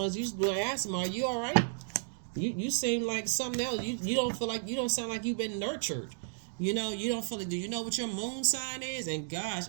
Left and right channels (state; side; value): silent; left; digital silence